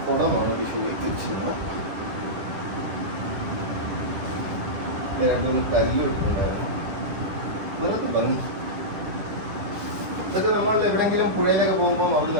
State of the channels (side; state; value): left; late; 10 ms